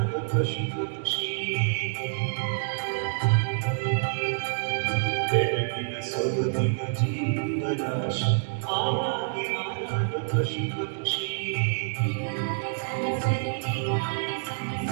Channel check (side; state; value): left; silent; digital silence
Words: ಪಶು ಪಕ್ಷಿ ಬೆಳಗಿನ ಸೊಗಡಿನ ಜೀವರಾಶಿ ಆಗಿ ಆದ ಪಶು ಪಕ್ಷಿ